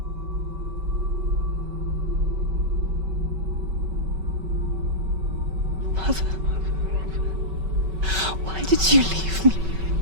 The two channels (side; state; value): left; late; 5.3 ms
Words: Mother, why did you leave me?